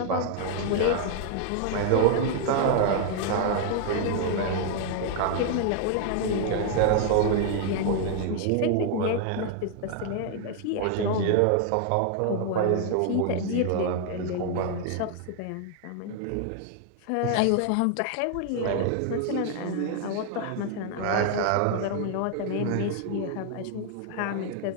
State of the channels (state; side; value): different; both; correlation 0.00